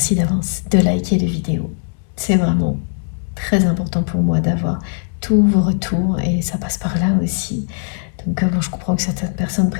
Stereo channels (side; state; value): right; silent; digital silence